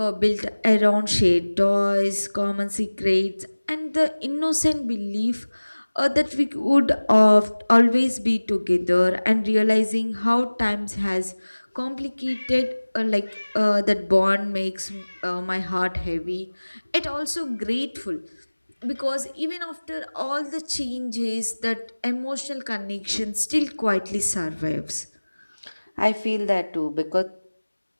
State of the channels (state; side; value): inverted; both; correlation -1.00